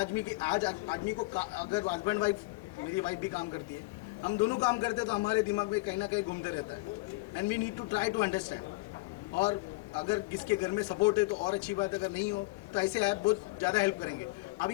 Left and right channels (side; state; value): right; quieter; 23.2 dB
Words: आदमी को अगर हस्बैंड वाइफ, मेरी वाइफ भी काम करती है, हम दोनों काम करते हैं, तो हमारे दिमाग में कहीं ना कहीं घूमते रहता है, and we need to try to understand. और अगर किसके घर में सपोर्ट है तो और अच्छी बात है, अगर नहीं हो तो ऐसे ऐप बहुत ज़्यादा हेल्प करेंगे।